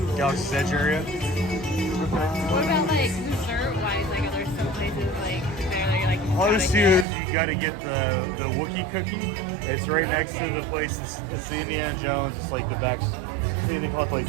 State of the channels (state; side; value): drops out; left; at 7.1 s